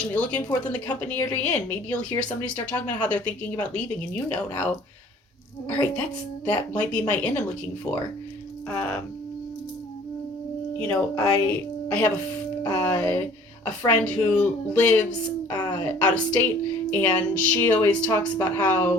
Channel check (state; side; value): normal; both; correlation 0.52